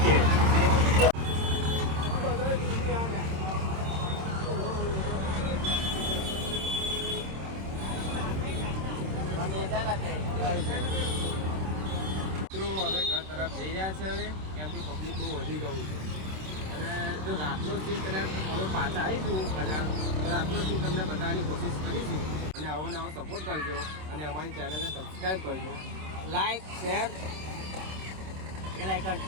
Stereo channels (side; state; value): left; late; 26 ms